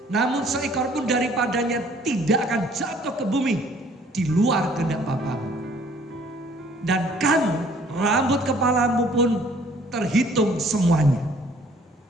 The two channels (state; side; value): normal; both; correlation 0.58